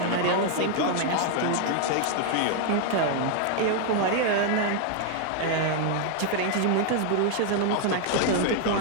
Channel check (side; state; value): both; different; correlation 0.00